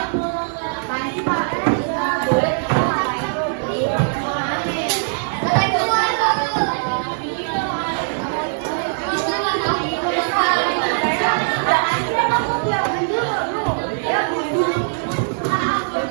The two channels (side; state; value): left; silent; digital silence